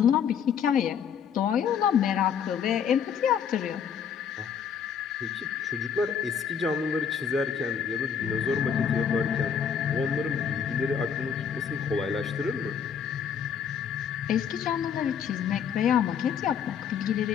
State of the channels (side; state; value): right; quieter; 7.5 dB